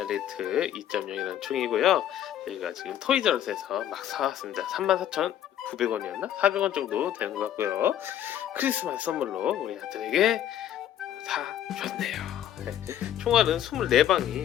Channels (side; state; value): right; quieter; 11.1 dB